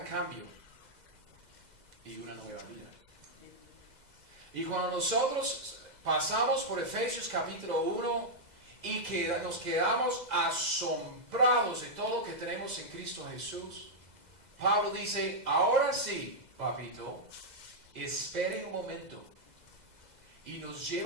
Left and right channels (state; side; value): late; left; 2.0 ms